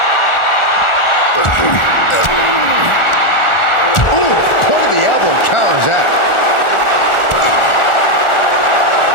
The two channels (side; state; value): right; late; 1.4 ms